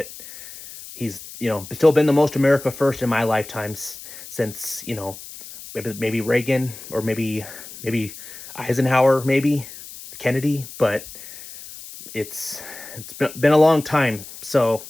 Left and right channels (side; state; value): left; noise; hiss, 15 dB below the sound